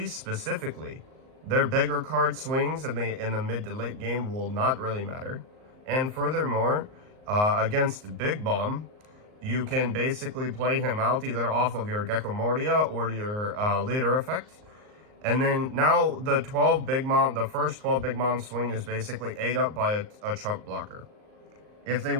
specifically, their bigger card swings in the mid to late game will not really matter. And furthermore, against Big Bomb, you can basically play him out either off of your Gecko Moria or your leader effect. And then now the first 12 Big Mom swing is basically ate up by a chunk blocker. If they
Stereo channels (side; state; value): left; late; 38 ms